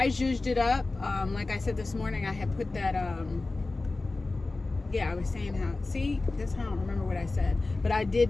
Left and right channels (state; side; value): quieter; right; 3.4 dB